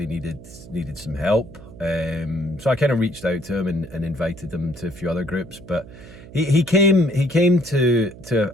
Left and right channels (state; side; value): noise; right; hum, 17 dB below the sound